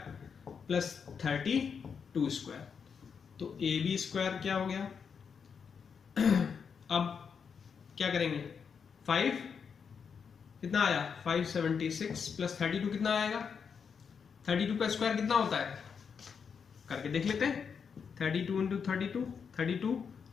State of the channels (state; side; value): quieter; right; 6.4 dB